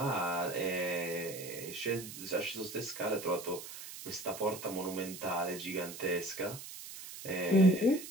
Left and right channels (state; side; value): noise; right; hiss, 11 dB below the sound